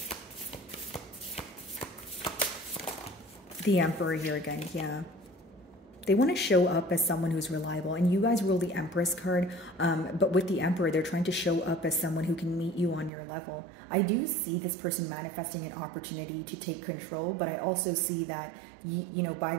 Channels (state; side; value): drops out; left; at 13.1 s